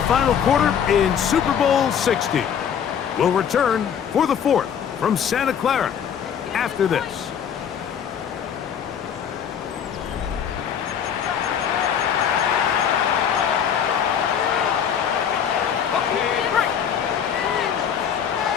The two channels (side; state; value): right; quieter; 8.2 dB